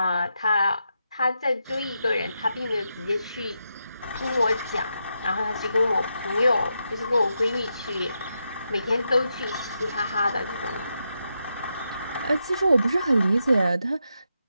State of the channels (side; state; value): both; inverted; correlation -0.85